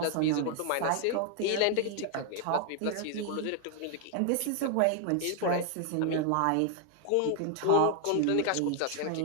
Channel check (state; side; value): different; both; correlation 0.00